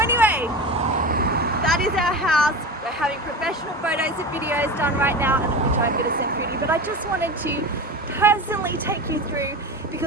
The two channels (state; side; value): normal; both; correlation 0.27